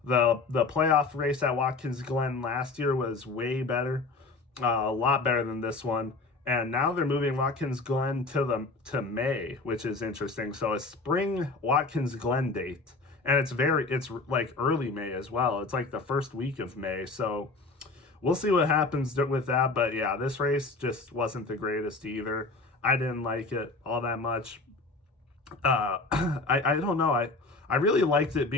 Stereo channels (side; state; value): right; quieter; 3.6 dB